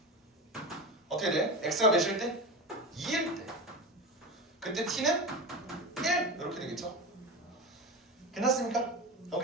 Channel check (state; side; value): normal; both; correlation 0.25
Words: 어떻게 돼? x가 몇일 때? 2일 때. 그때 t는 1 이렇게 되겠죠. 괜찮습니까?